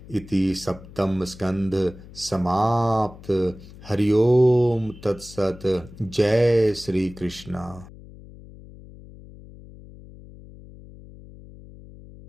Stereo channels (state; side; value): noise; left; hum, 19 dB below the sound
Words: इति सप्तम स्कंध समाप्त। हरि ओम तत्सत। जय श्री कृष्णा।